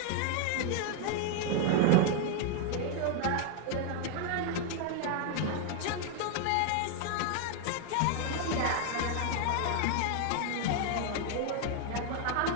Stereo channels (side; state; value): both; different; correlation 0.00